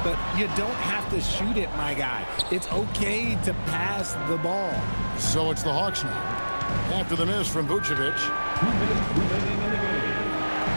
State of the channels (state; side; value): inverted; both; correlation -1.00